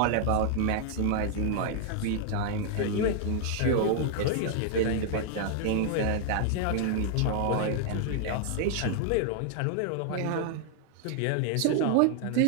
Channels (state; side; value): different; both; correlation 0.00